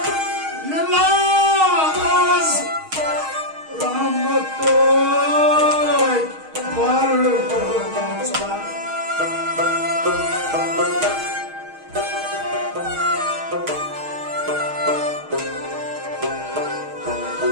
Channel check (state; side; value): late; left; 6.4 ms